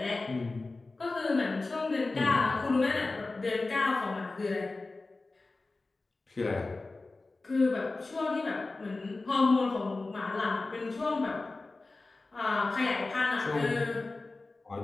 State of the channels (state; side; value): quieter; right; 3.4 dB